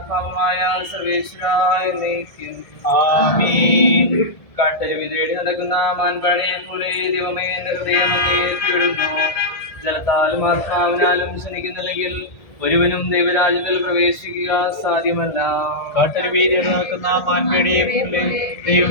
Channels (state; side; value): late; right; 1.7 ms